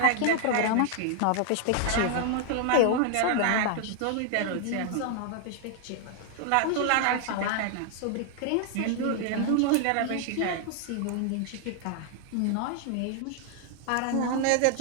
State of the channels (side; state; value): both; different; correlation 0.00